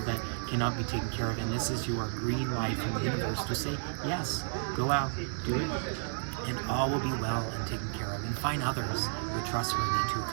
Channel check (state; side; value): silent; left; digital silence